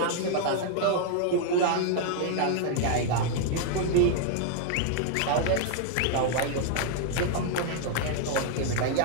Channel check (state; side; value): different; both; correlation 0.00